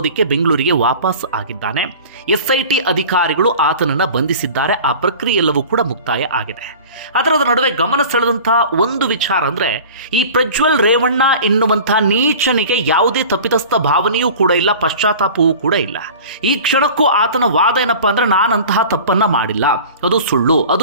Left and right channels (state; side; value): inverted; both; correlation -0.40